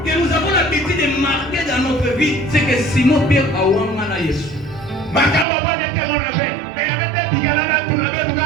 que nous avons l'habitude de marquer dans notre vie, c'est que Simon Pierre a Awamana Yesu.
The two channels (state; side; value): drops out; left; at 5.5 s